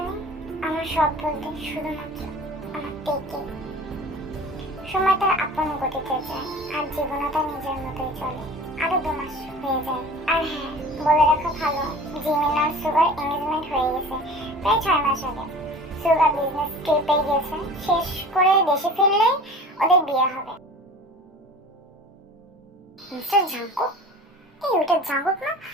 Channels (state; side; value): normal; both; correlation 0.42